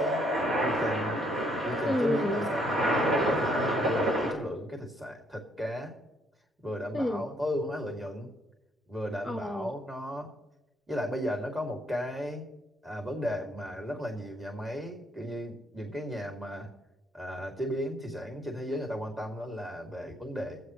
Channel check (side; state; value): both; normal; correlation 0.70